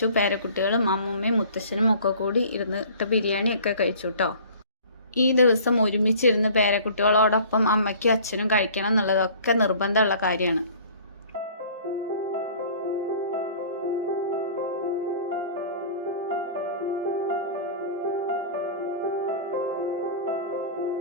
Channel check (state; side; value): inverted; both; correlation -0.47